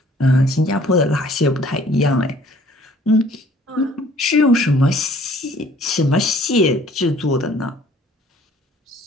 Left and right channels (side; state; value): both; normal; correlation 0.56